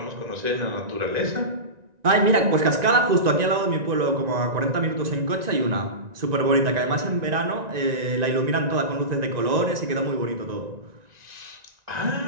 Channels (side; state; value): left; late; 1.9 ms